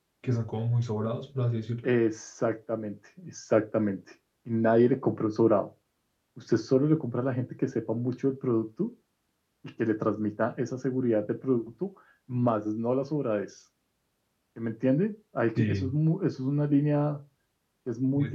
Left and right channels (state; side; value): identical; both; correlation 1.00